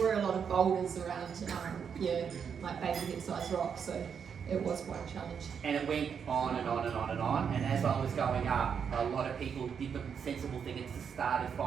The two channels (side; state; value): left; quieter; 7.0 dB